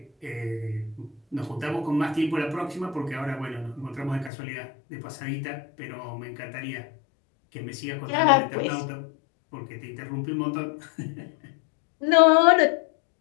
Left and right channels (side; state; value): right; drops out; at 4.3 s